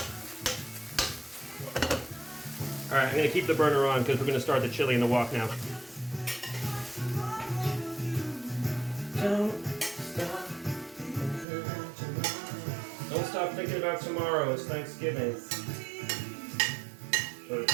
Alright, I'm going to keep the burner on because we're going to start the chili in the wok now. Don't stop thinking about tomorrow. It's Thanksgiving. Or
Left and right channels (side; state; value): left; drops out; at 11.5 s